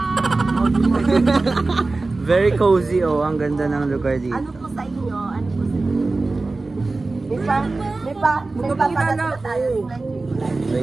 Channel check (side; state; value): left; quieter; 3.4 dB